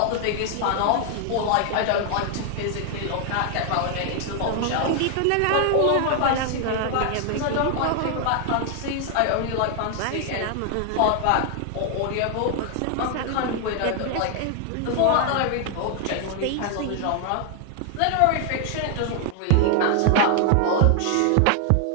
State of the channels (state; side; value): different; both; correlation 0.00